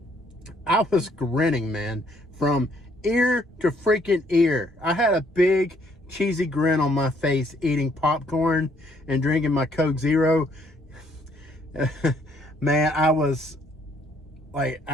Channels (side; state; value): both; normal; correlation 0.67